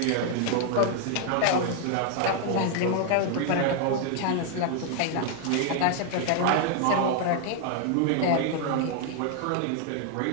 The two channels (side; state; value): both; different; correlation 0.00